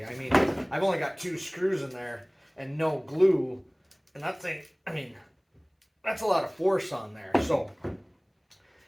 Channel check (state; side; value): identical; both; correlation 1.00